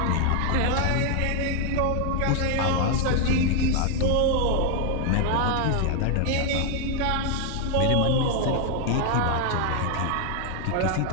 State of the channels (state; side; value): different; both; correlation 0.00